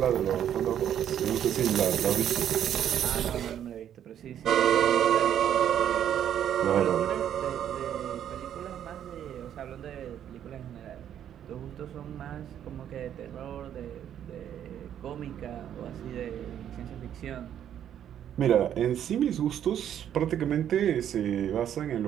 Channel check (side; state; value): left; quieter; 10.0 dB